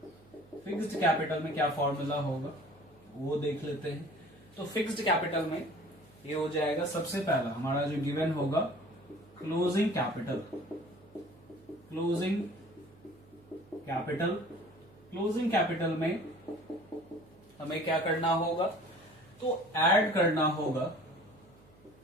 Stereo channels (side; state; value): right; noise; hum, 26 dB below the sound